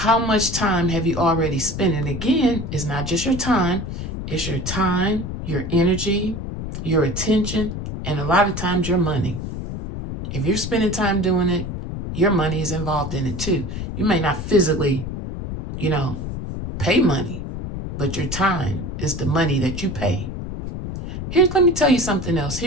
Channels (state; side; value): noise; left; rumble, 6 dB below the sound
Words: much time have you already spent? And again, it's not just your time, it's your time, your energy, your attention, and a lot of times your money. If you're spending time doing it, your money is involved in it too. You may not physically, pay money, but your time is the money that you pay. Let me tell you something else.